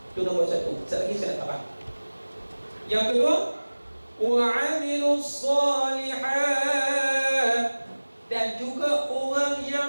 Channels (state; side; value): inverted; both; correlation -1.00